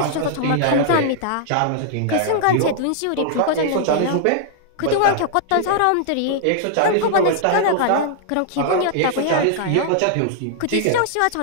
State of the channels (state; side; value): different; both; correlation -0.01